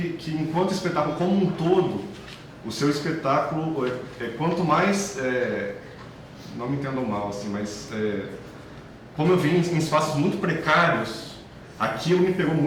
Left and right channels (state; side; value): identical; both; correlation 1.00